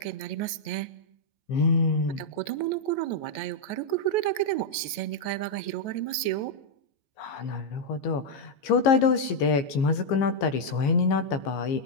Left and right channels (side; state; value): right; late; 14 ms